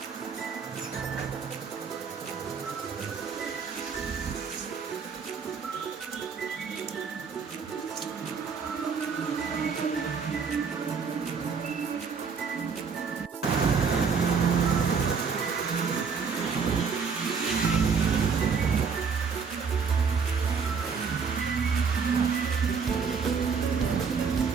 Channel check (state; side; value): quieter; left; 5.8 dB